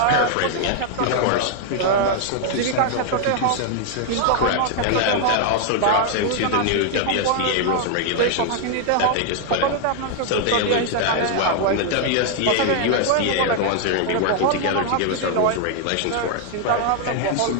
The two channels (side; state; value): both; different; correlation 0.00